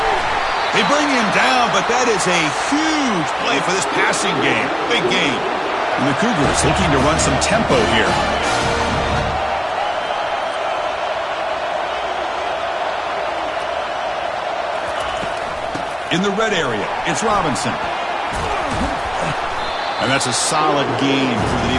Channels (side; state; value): both; identical; correlation 1.00